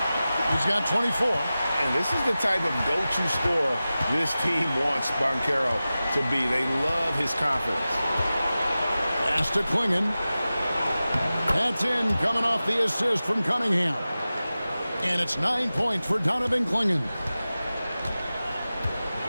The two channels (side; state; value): both; inverted; correlation -0.95